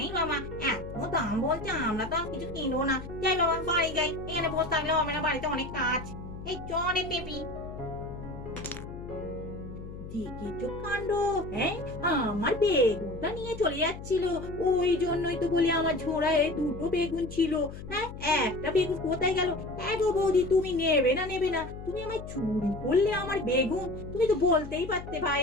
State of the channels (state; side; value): noise; left; hum, 11 dB below the sound